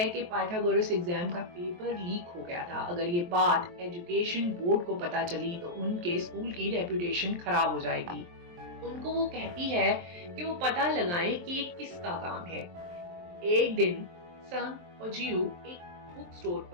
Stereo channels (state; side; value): late; left; 23 ms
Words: कि पाइथागोरस एग्जाम का पेपर लीक हो गया था। अगर ये बात एजुकेशन बोर्ड को पता चली तो उनके स्कूल की रेपुटेशन खराब हो जाएगी। उनको वो कहती है कि वो पता लगाएं कि ये किसका काम है। एक दिन संग और जियू एक बुक स्टोर